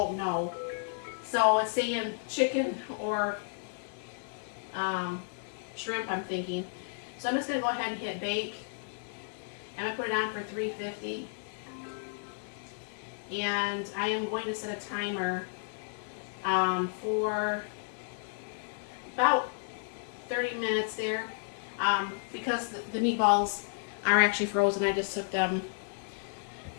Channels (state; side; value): silent; right; digital silence